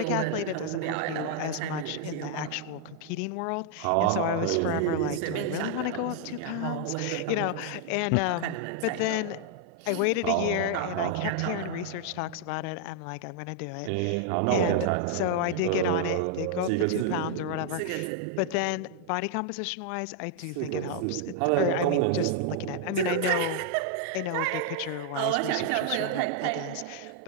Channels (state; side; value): different; both; correlation 0.00